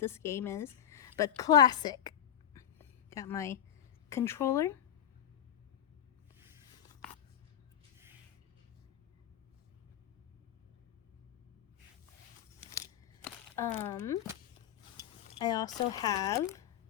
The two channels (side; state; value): right; quieter; 10.2 dB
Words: game is, but classic. Got my controller. I also have,